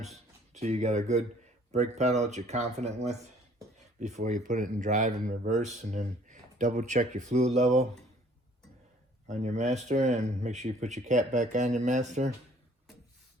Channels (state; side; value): normal; both; correlation 0.57